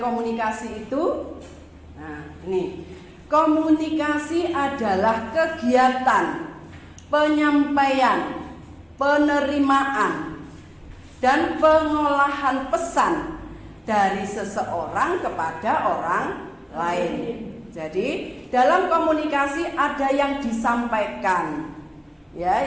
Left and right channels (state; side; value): identical; both; correlation 1.00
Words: itu. Nah, ini komunikasi adalah kegiatan penyampaian, penerimaan, dan pengolahan pesan dari seseorang kepada orang lain. Jadi, dalam komunikasi ada yang disampaikan, ya,